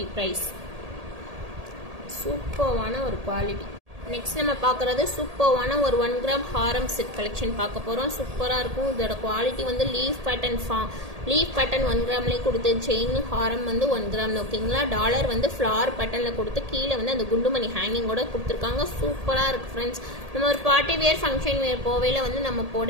price. சூப்பர்வான ஒரு குவாலிட்டி. நெக்ஸ்ட் நம்ம பார்க்குறது சூப்பர்வான ஒரு 1 கிராம் ஹாரம் செட் கலெக்ஷன் பார்க்க போகிறோம். சூப்பராக இருக்கும். இதோட குவாலிட்டி வந்து லீஃப் பேட்டர்ன் 1 கிராம்லேயே கொடுத்து, செயின் ஹாரம் வந்து 1 கிராம் ஓகேங்களா. டாலர் வந்து ஃப்ளார் பேட்டர்னில் கொடுத்து, கீழே வந்து அந்த குண்டுமணி ஹேங்கிங்கோட கொடுத்துருக்காங்க. சூப்பராக இருக்குது ஃப்ரெண்ட்ஸ். நம்ம ஒரு பார்ட்டி வேர் ஃபங்க்ஷன் வேர் போவையில் வந்து நம்ம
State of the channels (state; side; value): late; left; 1.8 ms